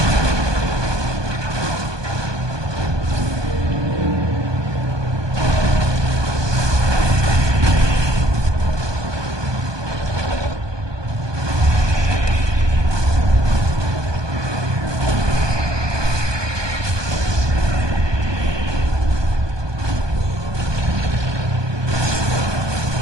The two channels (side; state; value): left; late; 1.2 ms